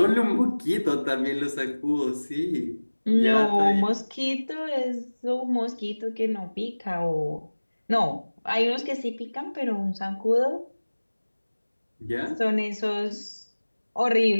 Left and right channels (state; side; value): inverted; both; correlation -1.00